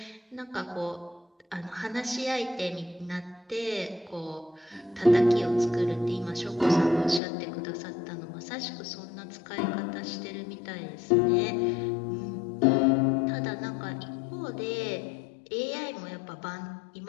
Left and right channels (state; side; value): drops out; right; at 7.2 s